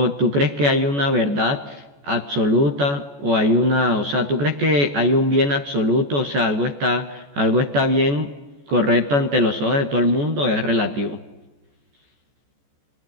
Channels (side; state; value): left; late; 14 ms